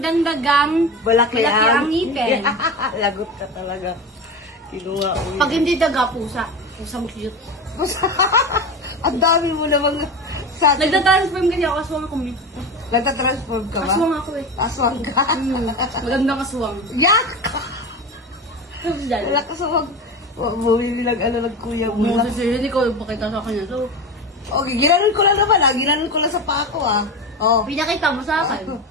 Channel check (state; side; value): normal; both; correlation 0.24